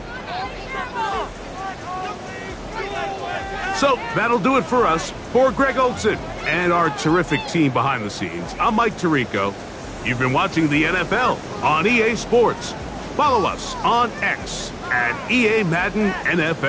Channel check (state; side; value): identical; both; correlation 1.00